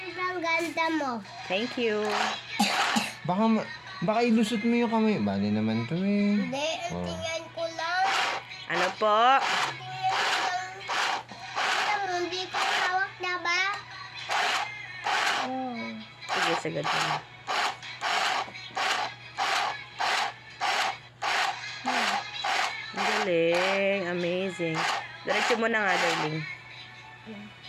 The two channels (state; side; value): identical; both; correlation 1.00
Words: ang ganda mo. Thank you. Baka ilusot mo yung kamay. Bali naman to eh. Hindi, Oh. tingnan ko lang. Ano po? Tingnan ko lang. Alam mo, hindi ko hawak na ba? Oh. Sige, sagad mo. Ang galing. Amazing. Diretso mo na nga, darling.